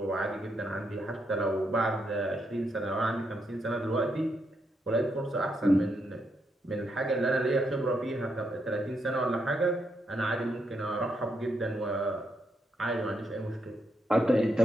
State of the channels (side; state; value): both; normal; correlation 0.80